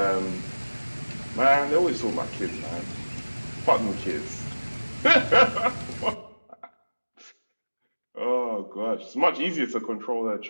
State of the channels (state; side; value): inverted; both; correlation -1.00